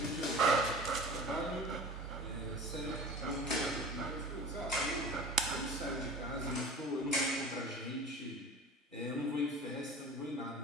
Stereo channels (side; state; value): both; normal; correlation 0.38